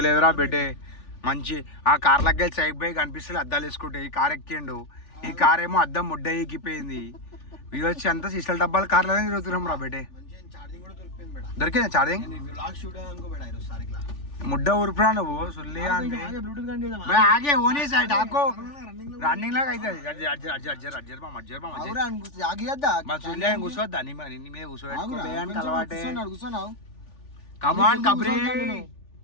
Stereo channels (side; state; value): right; late; 3.4 ms